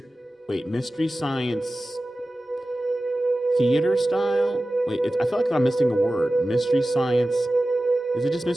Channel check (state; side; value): normal; both; correlation 0.95